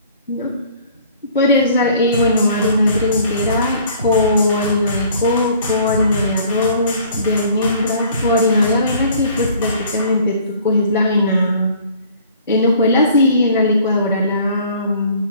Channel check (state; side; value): inverted; both; correlation -0.54